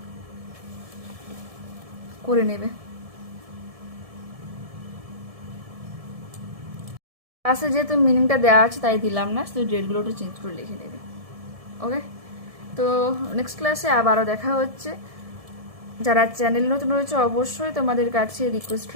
করে নেবে। ক্লাসে যেহেতু মিনিংটা দেওয়া আছে তাই দিলাম না, শুধু ডেটগুলো একটু চেঞ্জ করে লিখে নেবে। ওকে, তো নেক্সট ক্লাসে আবারও দেখা হচ্ছে। যারা চ্যানেল নতুন রয়েছে অবশ্যই তোমাদের কাছে রিকোয়েস্ট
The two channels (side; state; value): left; late; 1.7 ms